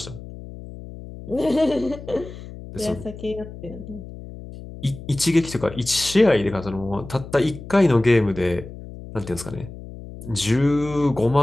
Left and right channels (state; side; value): noise; left; hum, 14 dB below the sound